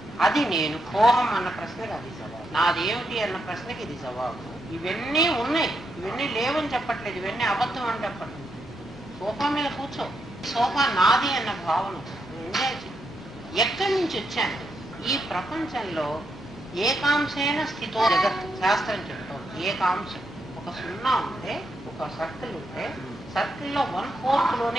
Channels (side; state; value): both; normal; correlation 0.81